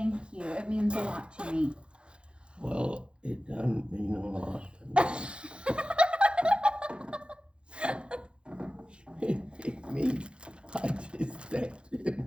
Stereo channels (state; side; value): late; left; 0.056 ms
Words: you. It means a lot to me. Well, it doesn't mean a lot to me. It means I just think to